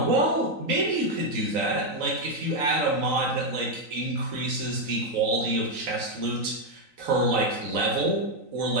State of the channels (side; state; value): left; late; 3.9 ms